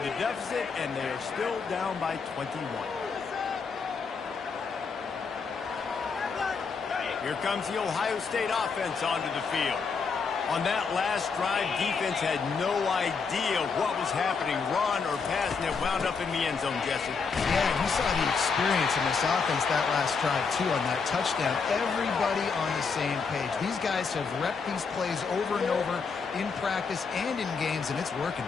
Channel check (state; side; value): quieter; right; 5.2 dB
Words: deficit, and they are still down by 21. Here comes the Ohio State offense onto the field. On that last drive, defense had no idea what was happening, run or pass, and it wound up in the end zone, Jesse. Yeah, you saw the experience in this offense that last drive, too, on that touchdown. Everybody on the same page. These guys have repped these plays over and over in practice and in games, and it's working.